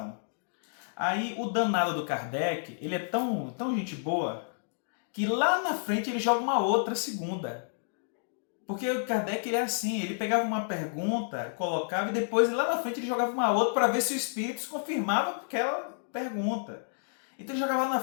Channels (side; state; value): right; silent; digital silence